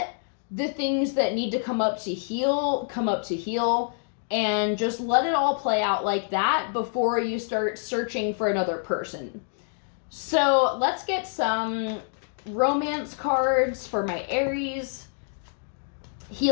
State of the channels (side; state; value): right; silent; digital silence